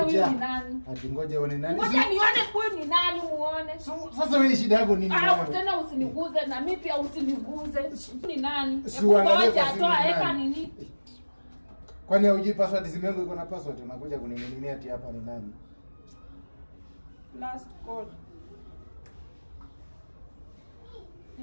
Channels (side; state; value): both; inverted; correlation -1.00